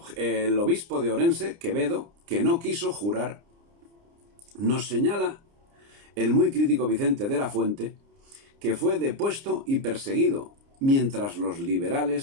obispo de Orense, Quevedo, que no quiso jurar, nos señala el muy crítico Vicente de la Fuente, que fue depuesto y perseguido, mientras los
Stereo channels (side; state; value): left; late; 29 ms